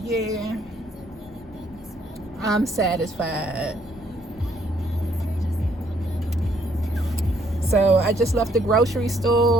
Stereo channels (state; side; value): normal; both; correlation 0.68